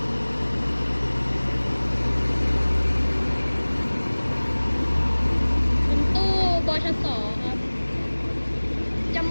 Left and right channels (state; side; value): inverted; both; correlation -1.00